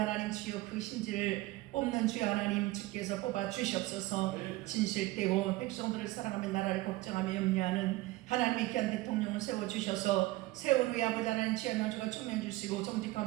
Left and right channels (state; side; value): quieter; left; 18.9 dB